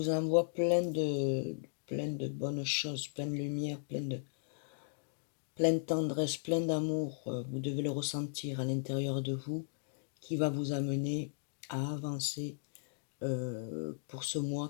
envoie plein de bonnes choses, plein de lumière, plein de tendresse, plein d'amour. Vous devez le ressentir à l'intérieur de vous qui va vous amener à avancer pour ce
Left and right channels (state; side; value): silent; right; digital silence